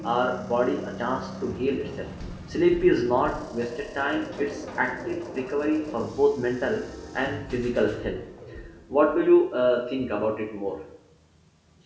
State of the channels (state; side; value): identical; both; correlation 1.00